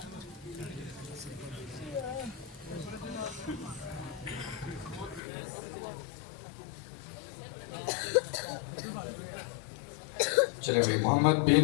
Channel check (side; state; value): right; drops out; at 5.2 s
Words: چلے بھائی، محمد بن